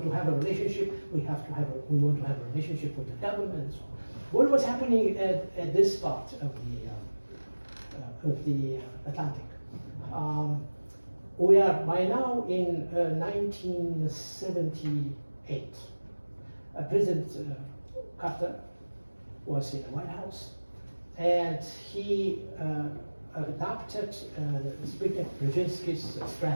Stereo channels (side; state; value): both; inverted; correlation -1.00